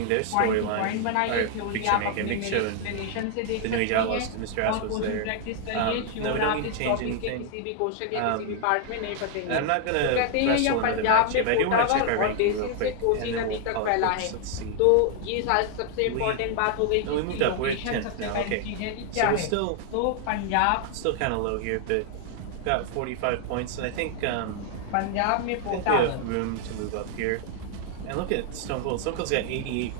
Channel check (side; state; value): both; different; correlation 0.00